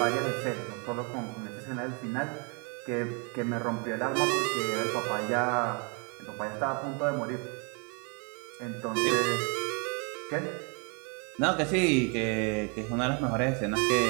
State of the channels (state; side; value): quieter; left; 34.9 dB